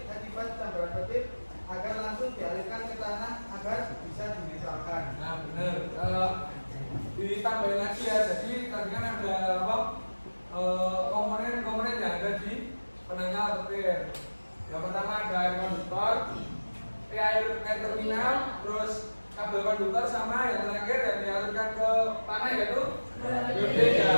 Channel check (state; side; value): inverted; both; correlation -1.00